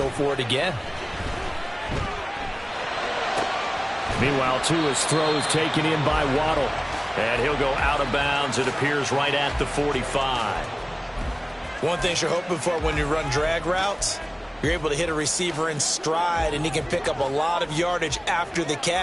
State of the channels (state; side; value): identical; both; correlation 1.00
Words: for it again. Meanwhile, Tua's throw is taken in by Waddle. And he'll go out of bounds, it appears, right at the 45. One thing you're hoping for when you run drag routes, you're able to hit a receiver in stride, and he can pick up a lot of yardage after the